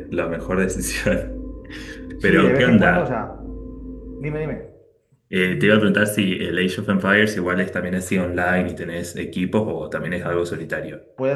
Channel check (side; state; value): both; identical; correlation 1.00